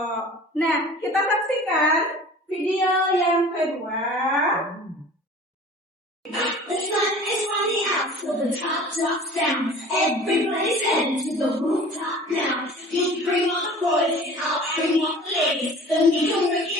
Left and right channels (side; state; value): both; normal; correlation 0.43